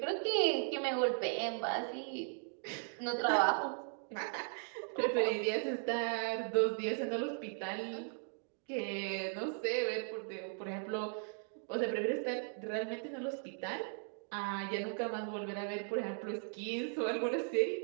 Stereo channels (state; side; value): silent; left; 53 dB below the other